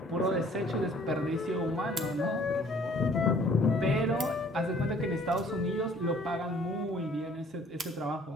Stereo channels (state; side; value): normal; both; correlation 0.56